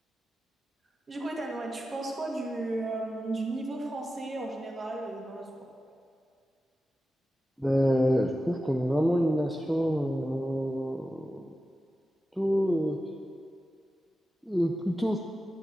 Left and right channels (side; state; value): both; normal; correlation 0.93